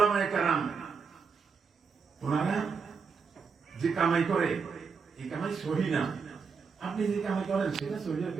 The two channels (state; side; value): quieter; left; 5.5 dB